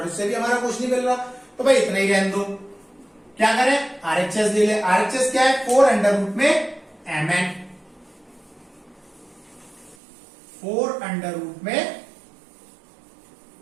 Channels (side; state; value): left; drops out; at 10.0 s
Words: उससे भी हमारा कुछ नहीं मिल रहा, तो भाई इतना ही रहने दो। क्या करें? RHS ले ले। RHS क्या है? 4 अंडर रूट में mn, 4 अंडर रूट में